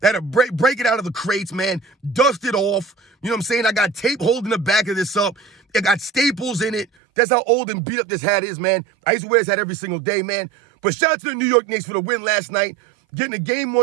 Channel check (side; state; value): left; drops out; at 6.9 s